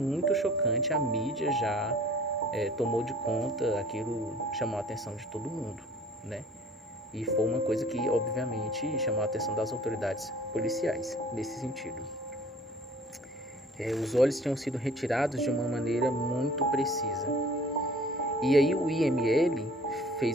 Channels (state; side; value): normal; both; correlation 0.50